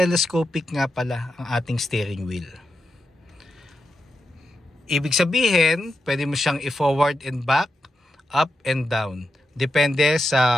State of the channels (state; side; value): normal; both; correlation 0.87